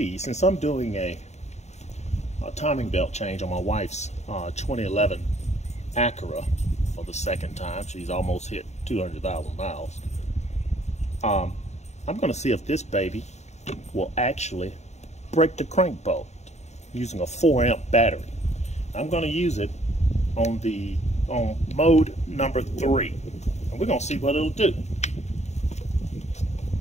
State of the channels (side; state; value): right; late; 0.32 ms